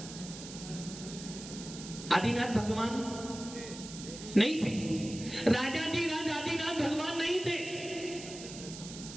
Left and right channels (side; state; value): right; noise; hiss, 12 dB below the sound